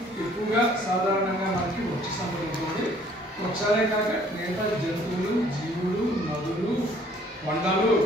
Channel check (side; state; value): both; normal; correlation 0.58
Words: ఎక్కువగా సాధారణంగా మనకి వృక్ష సంపద ఉంటుంది. వృక్షాలే కాక మిగతా జంతువులు, జీవులు, నదులు, కొండలు,